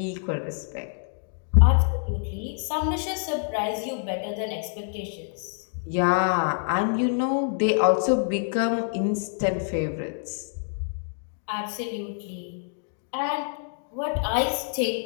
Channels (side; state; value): right; silent; digital silence